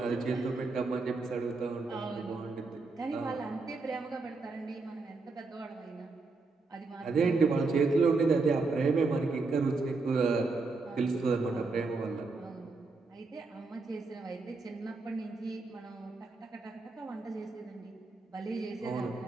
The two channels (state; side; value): quieter; left; 3.9 dB